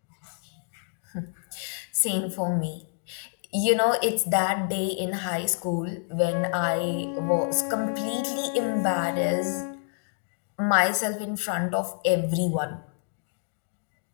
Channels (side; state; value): right; silent; digital silence